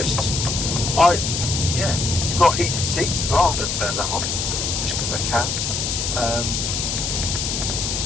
you've got heated seats as well. I'm going to turn that on just because I can.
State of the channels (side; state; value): left; noise; hiss, 1 dB below the sound